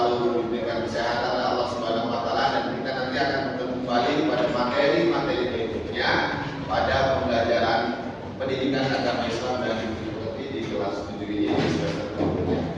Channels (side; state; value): both; identical; correlation 1.00